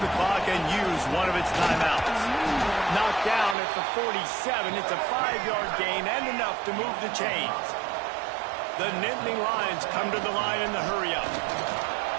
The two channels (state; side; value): drops out; left; at 3.6 s